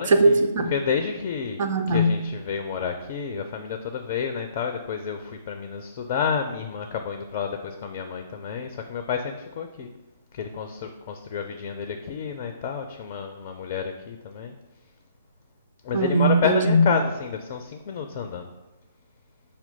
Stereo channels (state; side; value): inverted; both; correlation -0.60